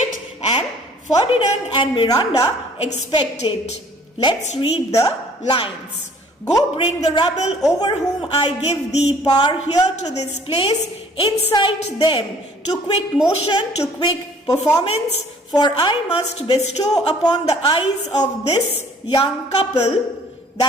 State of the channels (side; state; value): both; normal; correlation 0.55